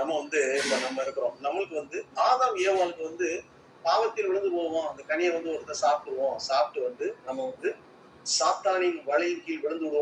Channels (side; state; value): both; identical; correlation 1.00